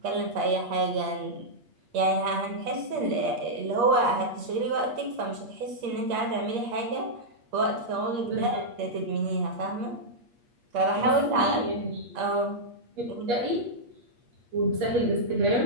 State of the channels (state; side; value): late; left; 8.5 ms